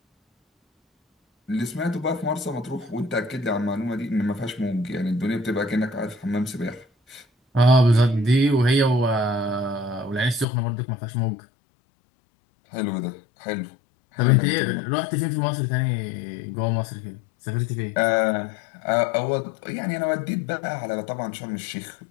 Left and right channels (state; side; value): drops out; right; at 10.5 s